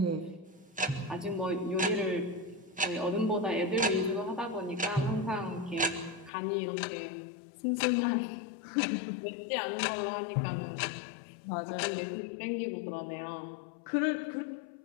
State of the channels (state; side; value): drops out; right; at 6.3 s